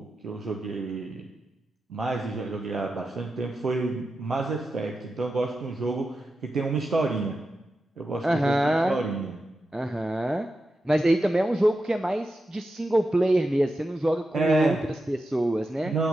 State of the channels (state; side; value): normal; both; correlation 0.90